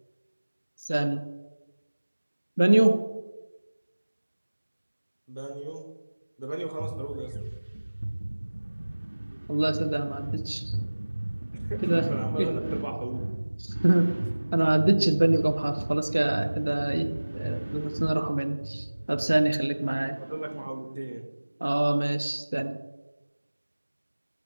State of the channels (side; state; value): both; inverted; correlation -1.00